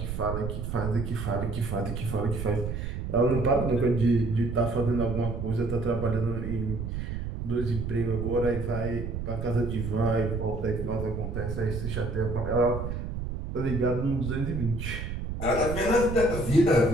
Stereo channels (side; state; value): right; noise; rumble, 5 dB below the sound